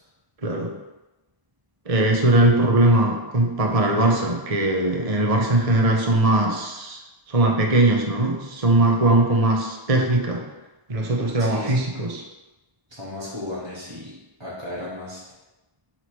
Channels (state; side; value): late; left; 1.0 ms